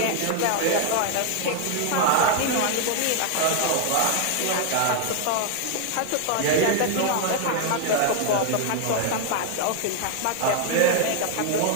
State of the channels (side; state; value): both; different; correlation 0.00